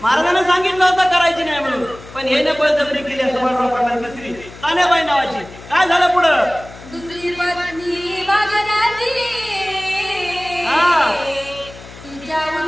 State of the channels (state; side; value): noise; left; hum, 18 dB below the sound